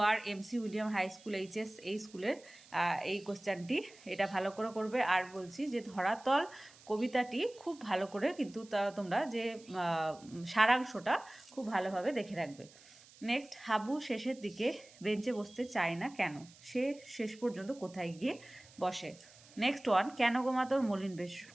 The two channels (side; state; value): right; noise; hiss, 23 dB below the sound